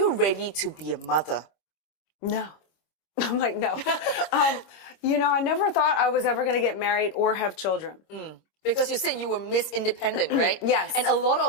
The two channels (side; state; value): right; late; 25 ms